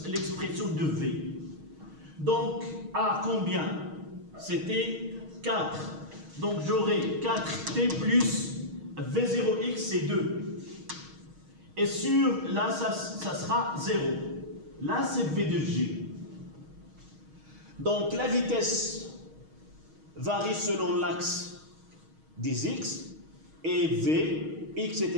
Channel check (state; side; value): late; left; 6.4 ms